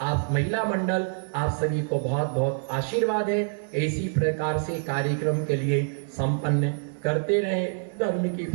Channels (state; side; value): silent; left; digital silence